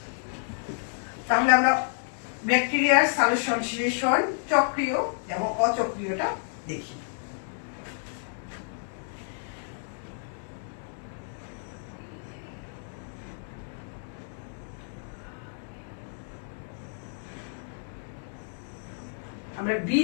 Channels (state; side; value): silent; right; digital silence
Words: তাহলে আমরা ব্যাকটেরিয়ার সংশ্লেষণ চক্রীয় এবং অচক্রীয়টা দেখি। আমরা